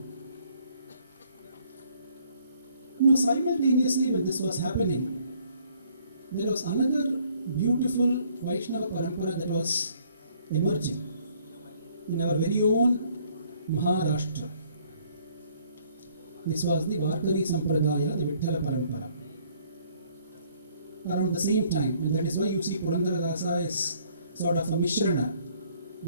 Now simultaneously when this was happening, there was another beautiful Vaishnava Parampara that was emerging in our very own Maharashtra. This was the Varkari Sampradaya, the Vitthala Parampara. Around the same time, and that is why you see Purandaradasa is sort of a mishrana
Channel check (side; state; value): both; inverted; correlation -0.63